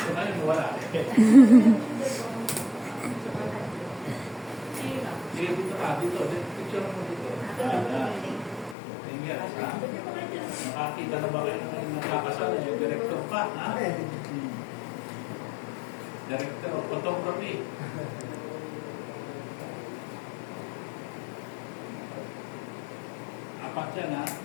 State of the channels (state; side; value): drops out; right; at 8.8 s